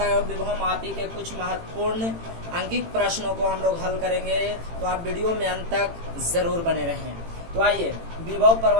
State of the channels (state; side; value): late; left; 18 ms